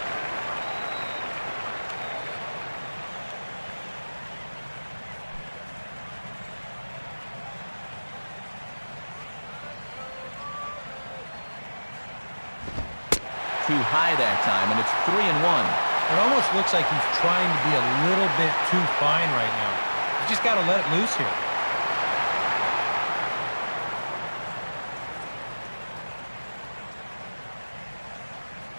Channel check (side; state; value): both; inverted; correlation -1.00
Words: Too high that time, and it's 3-1. It almost looks like he's trying to be a little bit too fine right now. You just got to let it loose here.